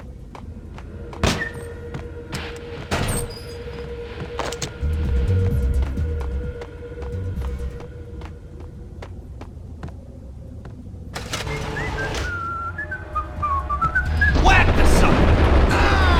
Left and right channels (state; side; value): identical; both; correlation 1.00